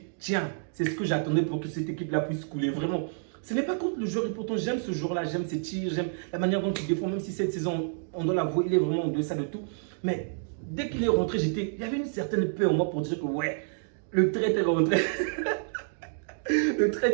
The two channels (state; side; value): silent; left; digital silence